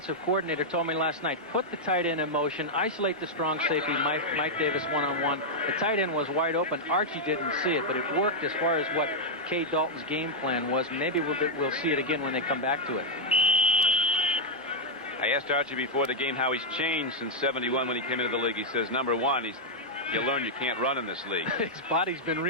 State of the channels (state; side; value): normal; both; correlation -0.05